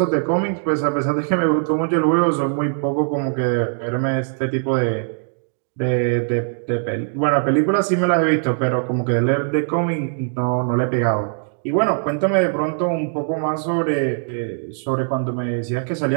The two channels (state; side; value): silent; left; digital silence